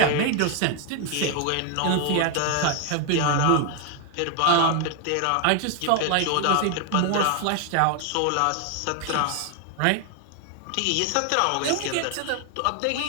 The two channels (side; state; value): both; different; correlation 0.01